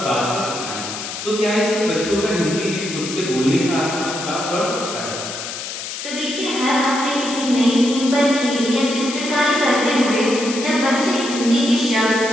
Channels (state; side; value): noise; left; hiss, 7 dB below the sound